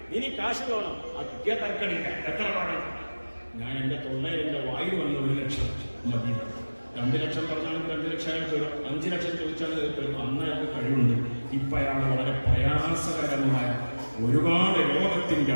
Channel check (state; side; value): inverted; both; correlation -1.00